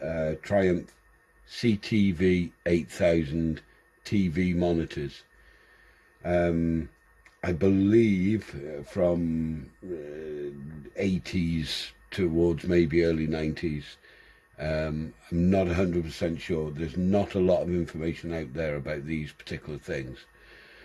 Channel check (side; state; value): both; identical; correlation 1.00